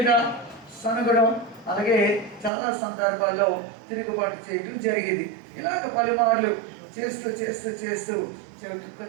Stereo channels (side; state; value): left; drops out; at 2.5 s